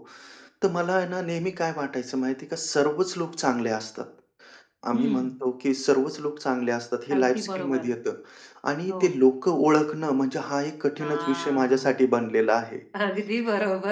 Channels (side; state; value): both; identical; correlation 1.00